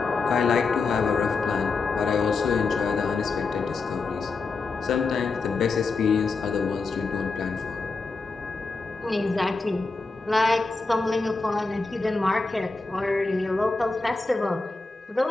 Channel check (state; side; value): quieter; right; 4.0 dB